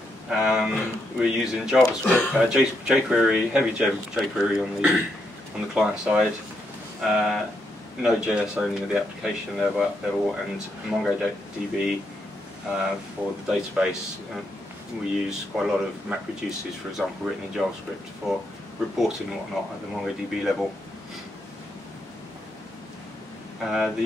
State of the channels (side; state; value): both; normal; correlation 0.79